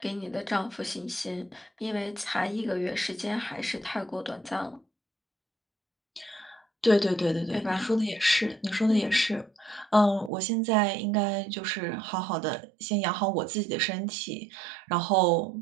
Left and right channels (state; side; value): drops out; left; at 10.3 s